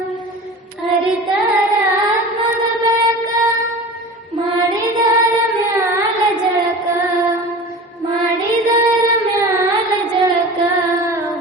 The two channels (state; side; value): normal; both; correlation 0.35